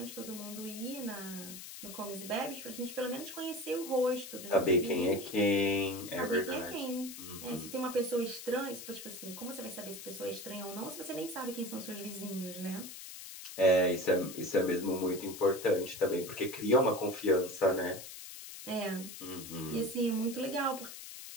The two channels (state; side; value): noise; left; hiss, 11 dB below the sound